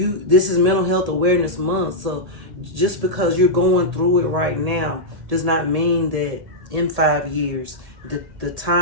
is Mental Health Awareness Month. So just because you're going through it right now does not mean that in 5 years, the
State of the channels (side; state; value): left; late; 1.8 ms